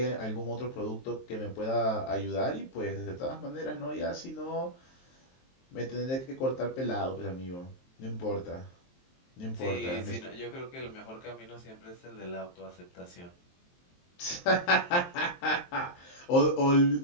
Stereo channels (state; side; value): late; right; 23 ms